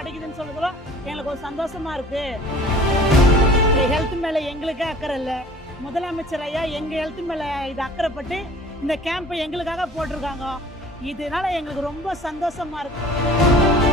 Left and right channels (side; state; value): both; normal; correlation 0.47